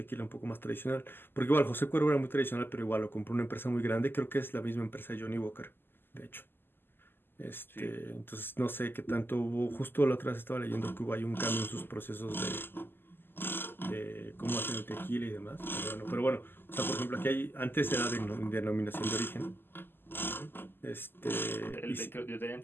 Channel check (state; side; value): late; right; 0.099 ms